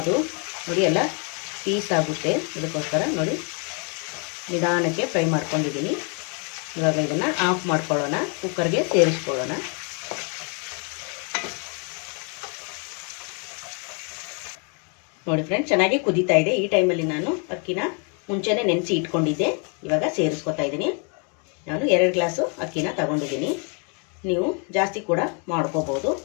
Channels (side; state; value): right; quieter; 37.4 dB